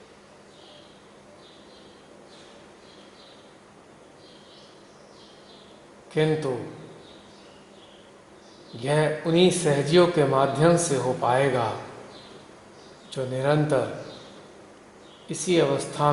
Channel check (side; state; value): both; identical; correlation 1.00